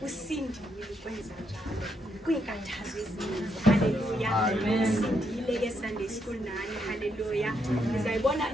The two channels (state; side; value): normal; both; correlation 0.78